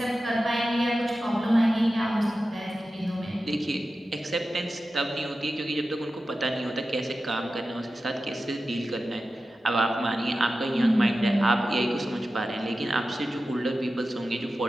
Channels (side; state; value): both; normal; correlation 0.93